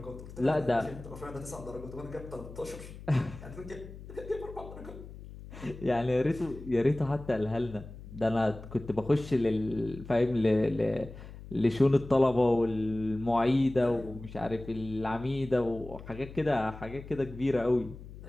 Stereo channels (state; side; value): noise; left; hum, 14 dB below the sound